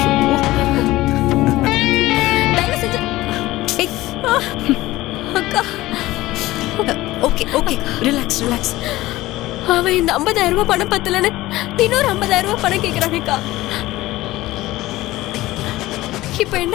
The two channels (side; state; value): right; quieter; 17.6 dB